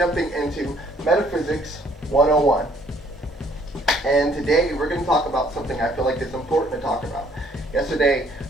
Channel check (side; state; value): both; normal; correlation 0.63